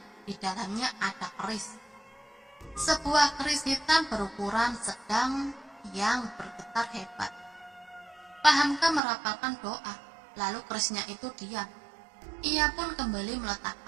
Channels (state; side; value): drops out; left; at 9.0 s